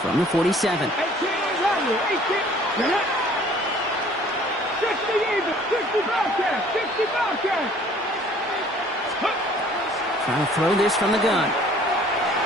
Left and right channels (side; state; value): both; normal; correlation 0.54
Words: from the 47. 18 Randall. 18. 60 even. 60 Bobcat. 60 Bobcat. Trying to throw this from the gun.